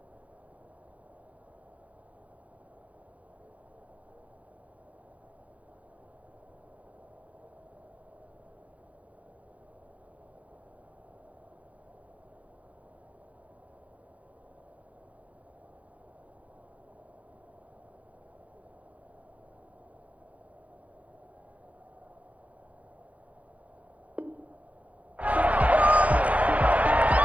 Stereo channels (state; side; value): late; left; 0.067 ms